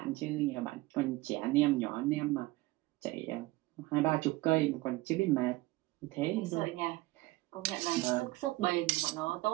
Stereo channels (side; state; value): left; quieter; 19.9 dB